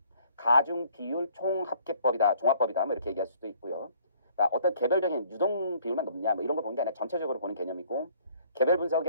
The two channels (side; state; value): both; inverted; correlation -0.59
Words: 가중 비율 총합계법이다, 종합법이다, 뭐 이렇게 얘기할 수도 있고요. 그러니까 어떤 개별적인 유동 비율만 높냐, 뭐 이런 걸 보는 게 아니라 전체적으로 보는 개념이고, 개별